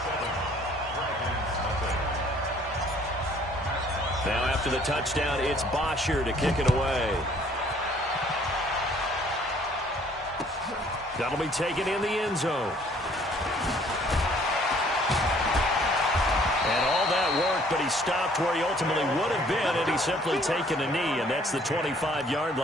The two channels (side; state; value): both; normal; correlation 0.59